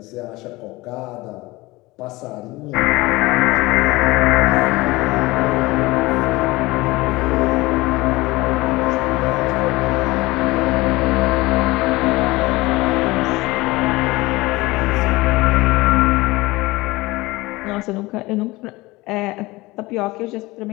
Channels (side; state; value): right; quieter; 21.1 dB